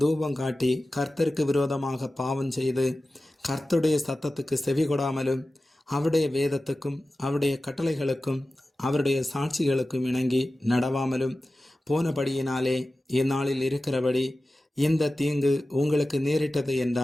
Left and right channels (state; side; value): normal; both; correlation 0.95